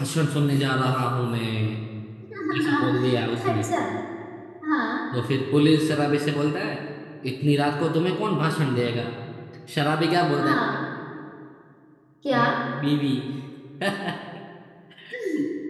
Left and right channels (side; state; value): both; identical; correlation 1.00